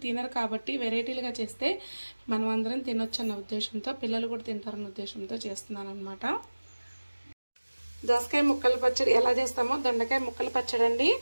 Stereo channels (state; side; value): inverted; both; correlation -1.00